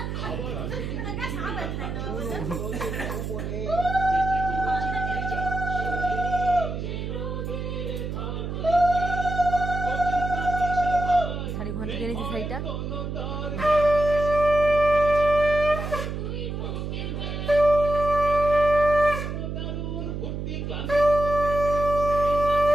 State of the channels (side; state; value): right; noise; hum, 5 dB below the sound